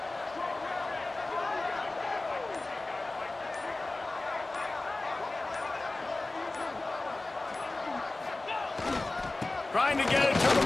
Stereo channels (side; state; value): right; quieter; 3.1 dB